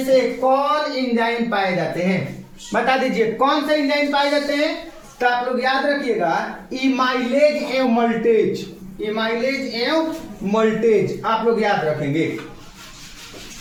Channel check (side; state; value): both; identical; correlation 1.00